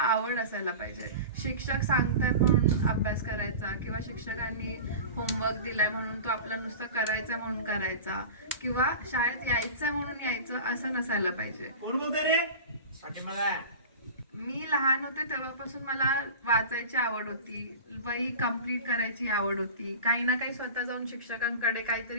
असायला पाहिजे. शिक्षक सांगतात म्हणून अभ्यास करायचा, किंवा शिक्षकांनी होमवर्क दिलाय म्हणून तो आपला नुसतं करायचा म्हणून करायचा, किंवा शाळेत यायचंय म्हणून यायचं असं नसायला पाहिजे. मी लहान होते तेव्हापासून मला वाचायची आवड होती, वही कंप्लीट करायची आवड होती, काही ना काही स्वतः जाऊन शिक्षकांकडे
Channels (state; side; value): inverted; both; correlation -0.33